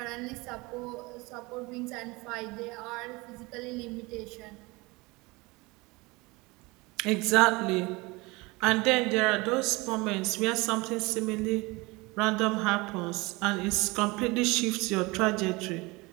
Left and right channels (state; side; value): quieter; left; 24.1 dB